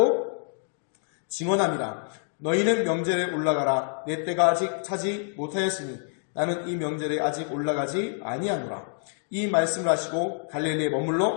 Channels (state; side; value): silent; right; 60 dB below the other